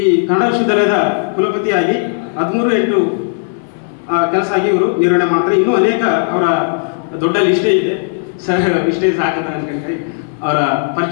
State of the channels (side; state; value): right; silent; digital silence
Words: ಕನ್ನಡ ವಿಶ್ವವಿದ್ಯಾಲಯದ ಕುಲಪತಿಯಾಗಿ 13/8 ಕೆಲಸ ಆಗಿ ಇವರು ನಿರ್ವಹಣೆ ಮಾಡ್ತಾರೆ. ಇನ್ನೂ ಅನೇಕ ಅವರ ದೊಡ್ಡ ಲಿಸ್ಟೇ ಇದೆ. ಇಷ್ಟೇ ಸಾಕಂತ ಅನ್ಕೊಂಡ್ರೆ ಅವರ